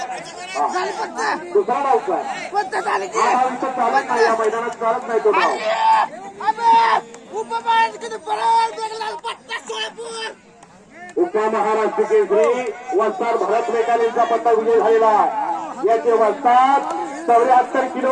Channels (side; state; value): both; identical; correlation 1.00